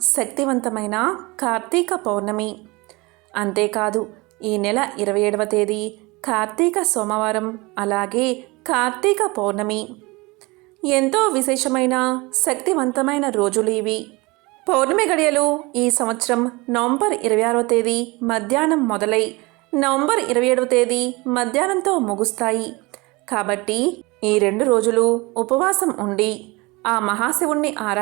శక్తివంతమైన కార్తీక పౌర్ణమి. అంతేకాదు ఈ నెల 27వ తేదీ కార్తీక సోమవారం, అలాగే కార్తీక పౌర్ణమి. ఎంతో విశేషమైన శక్తివంతమైన రోజులు ఇవి. పౌర్ణమి గడియలు ఈ సంవత్సరం నవంబర్ 26వ తేదీ మధ్యాహ్నం మొదలై నవంబర్ 27వ తేదీ మధ్యాహ్నంతో ముగుస్తాయి. కాబట్టి ఈ 2 రోజులు ఉపవాసం ఉండి ఆ మహాశివుణ్ణి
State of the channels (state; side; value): quieter; left; 24.3 dB